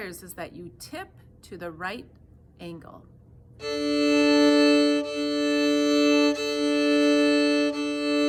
is that you tip to the right angle.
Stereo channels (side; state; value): both; identical; correlation 1.00